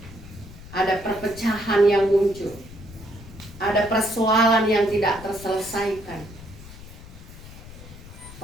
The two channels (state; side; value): noise; left; rumble, 16 dB below the sound